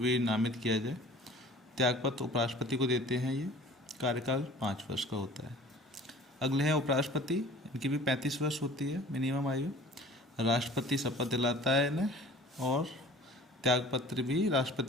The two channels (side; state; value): both; normal; correlation 0.46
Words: नामित किया जाए। त्यागपत्र उपराष्ट्रपति को देते हैं। ये कार्यकाल 5 वर्ष का होता है। अगले हैं उपराष्ट्रपति। इनकी भी 35 वर्ष होती है मिनिमम आयु। राष्ट्रपति शपथ दिलाता है इन्हें और त्यागपत्र भी